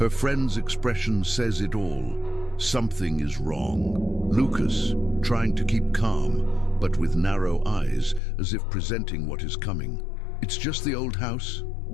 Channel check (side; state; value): right; drops out; at 8.2 s